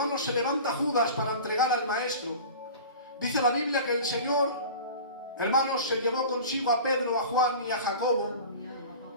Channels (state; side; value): inverted; both; correlation -0.37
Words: se levanta Judas para entregar al Maestro, dice la Biblia que el Señor, hermanos, se llevó consigo a Pedro, a Juan y a Jacobo.